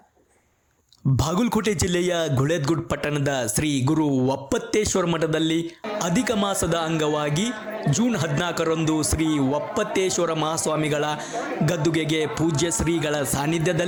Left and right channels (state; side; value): identical; both; correlation 1.00